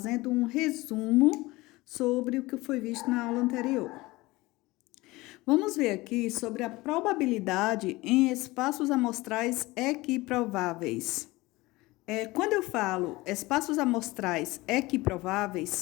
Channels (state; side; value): quieter; right; 20.8 dB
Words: um resumo sobre o que foi visto na aula anterior. Vamos ver aqui sobre a probabilidade em espaços amostrais equiprováveis. Quando eu falo espaços amostrais